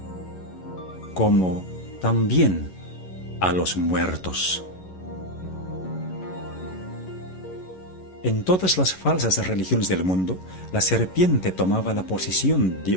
como también a los muertos. En todas las falsas religiones del mundo, la serpiente tomaba la posición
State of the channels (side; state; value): right; late; 11 ms